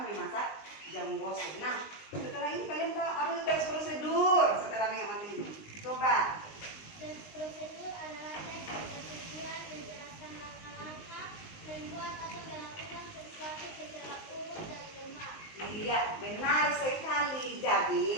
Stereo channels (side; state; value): right; late; 19 ms